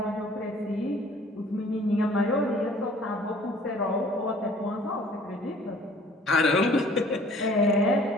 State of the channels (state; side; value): normal; both; correlation 0.53